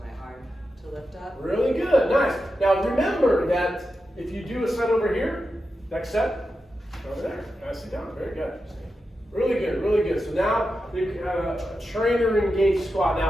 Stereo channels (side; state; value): both; normal; correlation 0.90